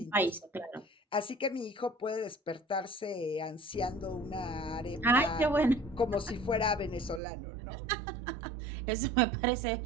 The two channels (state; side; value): drops out; left; at 7.2 s